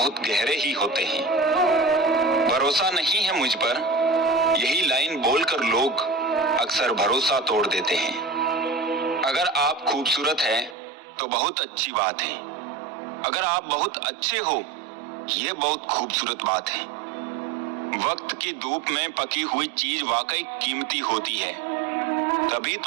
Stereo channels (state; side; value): drops out; left; at 10.8 s